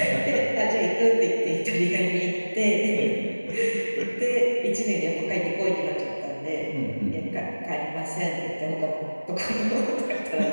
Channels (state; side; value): inverted; both; correlation -1.00